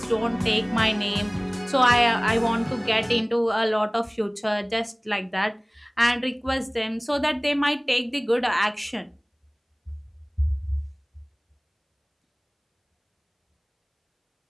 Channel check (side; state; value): both; identical; correlation 1.00